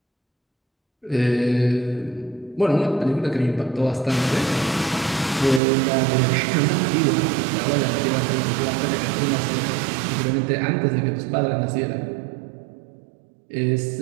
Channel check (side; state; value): left; drops out; at 5.6 s